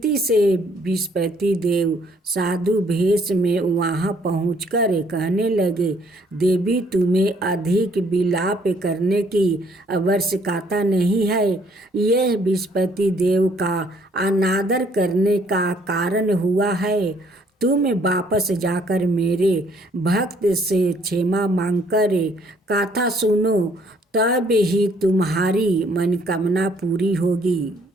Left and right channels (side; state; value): both; normal; correlation 0.64